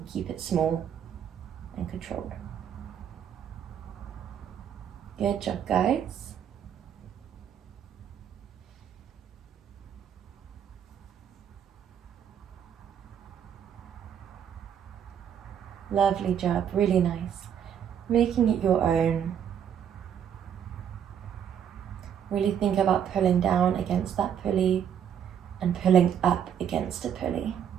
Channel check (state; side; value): quieter; left; 8.8 dB